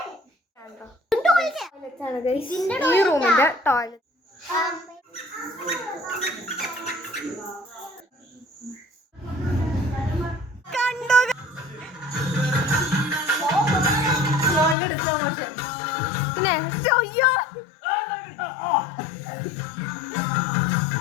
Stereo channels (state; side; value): drops out; right; at 14.8 s